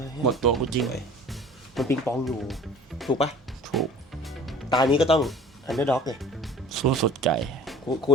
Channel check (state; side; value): normal; both; correlation 0.45